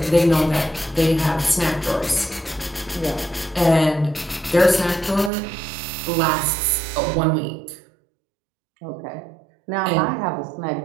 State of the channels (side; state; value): left; drops out; at 5.3 s